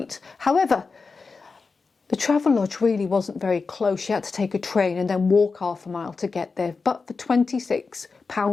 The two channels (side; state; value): right; quieter; 4.5 dB